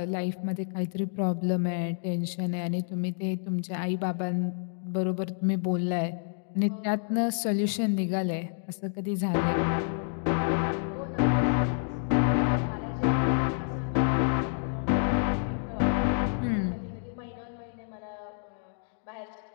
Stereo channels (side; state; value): right; silent; 59 dB below the other